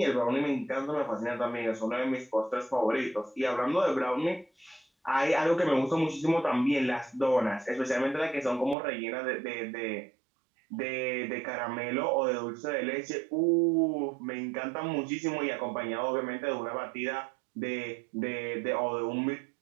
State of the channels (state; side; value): drops out; left; at 8.8 s